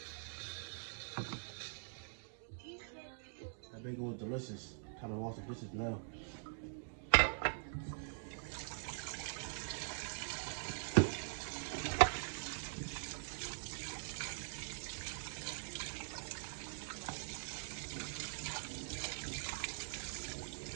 That bacon was delicious. Time to wash the dishes now.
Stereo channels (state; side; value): silent; left; digital silence